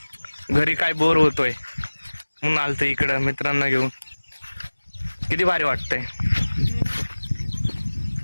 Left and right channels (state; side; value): inverted; both; correlation -1.00